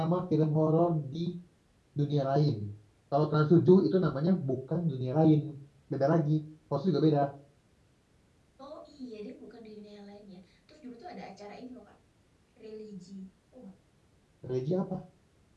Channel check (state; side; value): identical; both; correlation 1.00